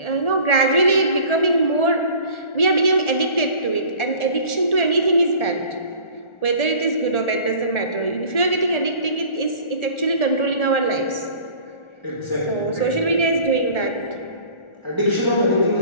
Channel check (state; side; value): late; right; 1.4 ms